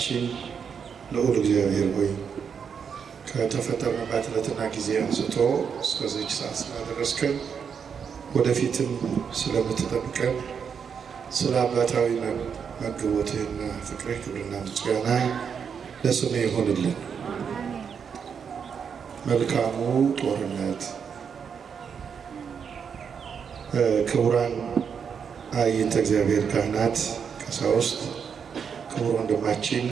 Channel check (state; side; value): quieter; left; 6.9 dB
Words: ልዑል እግዚአብሔር ሆይ ከተፈጠርንባት ዕለትና ጊዜ አንስቶ እስከዚች ሰዓት ስላደረስከን ወደፊትም ስለምትጠብቀን ስለ አባታዊ መግቦትህና ፍቅርህ ክብርና ምስጋና ለስምህ ይሁንልን። መልካሙ ጦርነት ክቡራን አይንተ እግዚአብሔር ካህናት፣ ቀሳውስት፣ ክቡር ወንድማችን